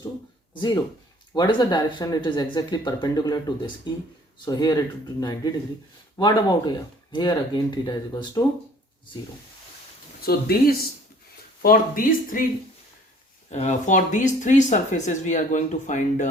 to 0. What is the direction? It is exactly perpendicular to this E. So here it would be 90 degree. What about here? Here again theta is equals to 0. So for these three surfaces we are going to find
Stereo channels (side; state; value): both; normal; correlation 0.55